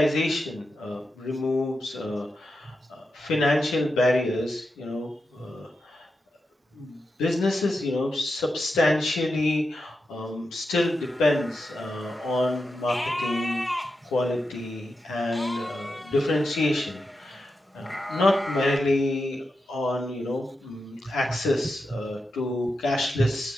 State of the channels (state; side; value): normal; both; correlation 0.88